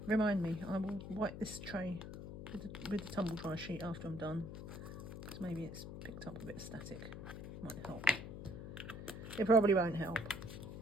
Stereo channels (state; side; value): noise; left; hum, 9 dB below the sound